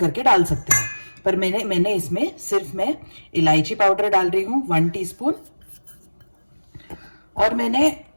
डाल सकते हैं। पर मैंने इसमें सिर्फ मैं इलायची पाउडर डाल रही हूँ 1 टीस्पून, और मैंने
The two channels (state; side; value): inverted; both; correlation -1.00